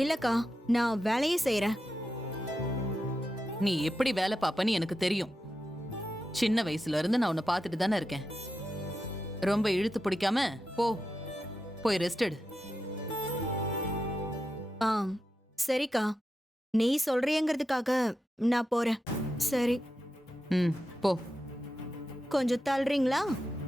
இல்லக்கா, நான் வேலையே செய்யறேன். நீ எப்படி வேலை பாப்பன்னு எனக்கு தெரியும். சின்ன வயசுல இருந்து நான் உன்னை பார்த்துட்டு தானே இருக்கேன். ரொம்ப இழுத்து பிடிக்காம போய் ரெஸ்ட் எடு. சரிக்கா, நீ சொல்றியங்கிறதுக்காக நான் போறேன். சரி. போ. கொஞ்சம் தள்ளுறீங்களா?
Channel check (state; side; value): normal; both; correlation 0.89